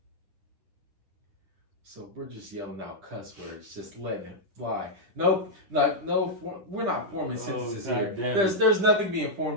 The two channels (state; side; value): late; left; 10 ms